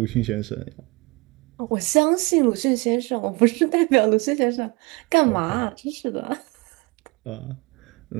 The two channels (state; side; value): quieter; left; 25.7 dB